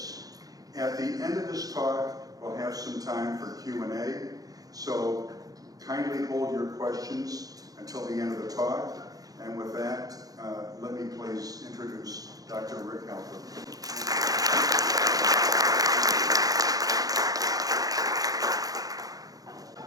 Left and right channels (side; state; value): left; late; 0.18 ms